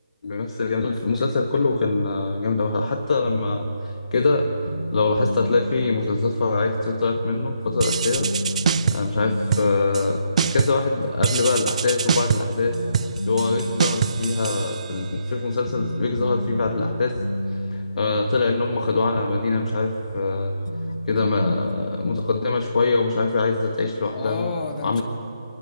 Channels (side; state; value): both; inverted; correlation -0.79